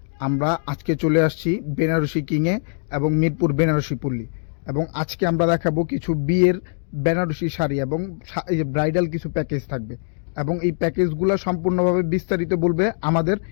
আমরা আজকে চলে আসছি বেনারসি কিংয়ে এবং মিরপুর বেনারসি পল্লী। এবং আজকে আমরা দেখাবো কিছু বিয়ের বেনারসি শাড়ি এবং ব্রাইডাল কিছু প্যাকেজ থাকবে। এবং এই প্যাকেজগুলো সম্পূর্ণভাবে বিস্তারিত বলবে আমাদের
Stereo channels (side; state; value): right; silent; digital silence